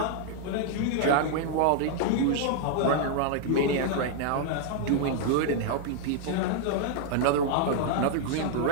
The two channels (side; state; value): both; different; correlation 0.00